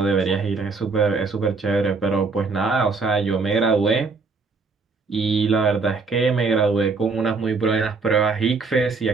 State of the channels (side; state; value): left; quieter; 4.3 dB